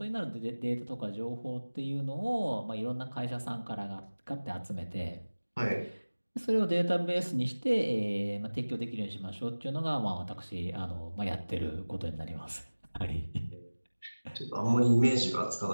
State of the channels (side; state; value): both; inverted; correlation -1.00